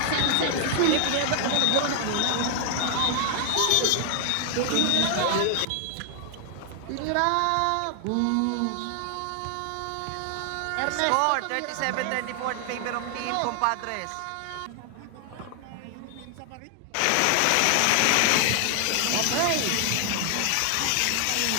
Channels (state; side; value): different; both; correlation 0.00